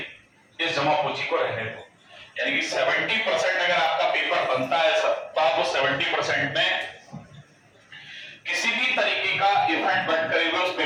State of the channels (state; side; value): identical; both; correlation 1.00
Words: इस जमा पूंजी को रहने दो। यानी कि 70% अगर आपका पेपर बनता है सर, तो आप वो 70% में किसी भी तरीके का इवेंट बन करे हुए उस